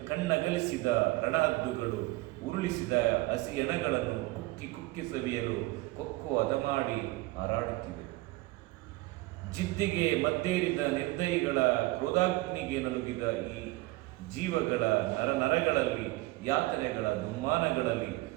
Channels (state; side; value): quieter; left; 20.2 dB